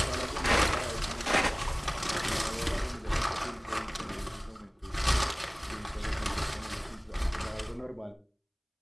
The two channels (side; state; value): both; identical; correlation 1.00